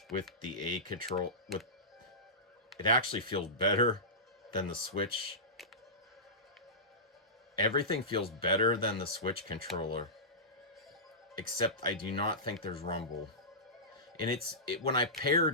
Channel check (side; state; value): both; normal; correlation -0.18